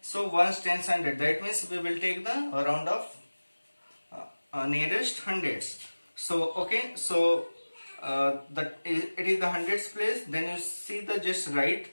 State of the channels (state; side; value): inverted; both; correlation -1.00